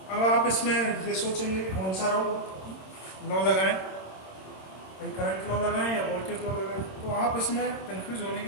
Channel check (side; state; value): right; late; 26 ms